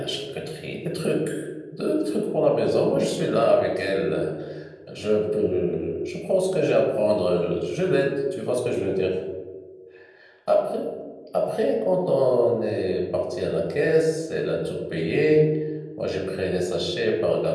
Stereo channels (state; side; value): identical; both; correlation 1.00